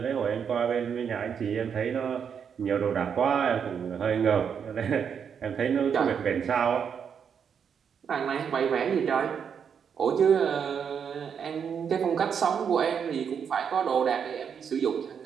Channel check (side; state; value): left; quieter; 7.3 dB